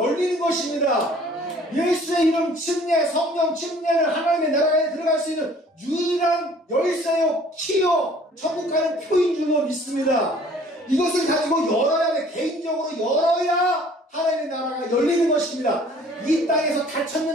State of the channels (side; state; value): both; normal; correlation 0.53